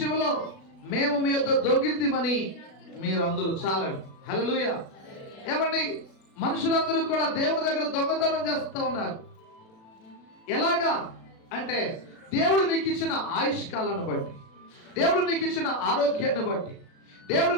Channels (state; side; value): late; right; 36 ms